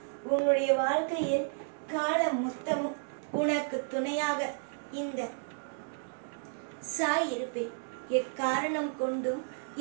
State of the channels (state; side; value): silent; left; digital silence